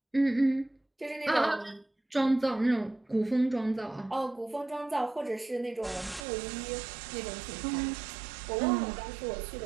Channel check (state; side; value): drops out; left; at 6.2 s